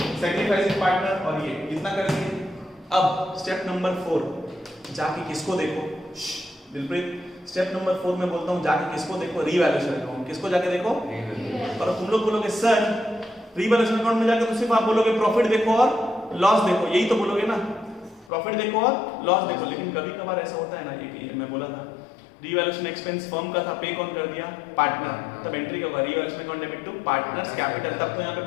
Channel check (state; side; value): drops out; right; at 18.3 s